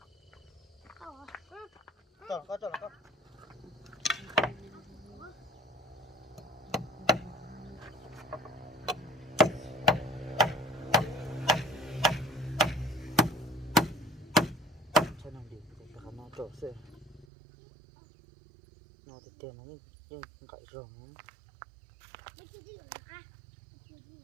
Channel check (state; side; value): drops out; left; at 17.2 s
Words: nó có cho nó đi để cho nó trộn xe nó thì tiền nó nhưng cậy rồng